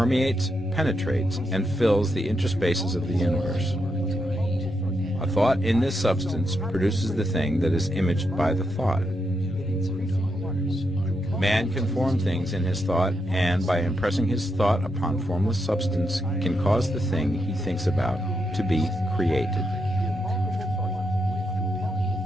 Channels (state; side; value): normal; both; correlation 0.82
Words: penetrates, and fills the interspaces of the universe. A thought in this substance produces the thing that is imaged by the thought. Man can form things in his thought, and by impressing his thought upon formless substance, can cause the thing he thinks about to be created.